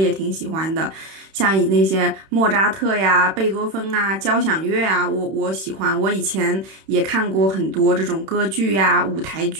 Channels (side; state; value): left; late; 31 ms